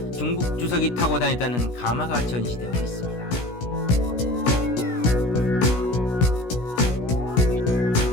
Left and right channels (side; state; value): right; late; 16 ms